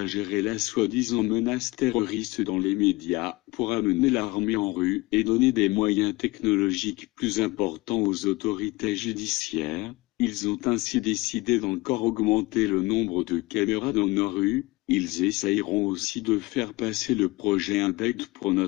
la soi-disant menace terroriste dans les médias pour amener l'armée en rue et donner des moyens technologiques plus importants aux autorités judiciaires. Ils ont ainsi décidé d'encore augmenter le nombre de caméras dans nos rues. Ils essayeront aussi de faire passer le projet Index pour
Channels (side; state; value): right; quieter; 22.0 dB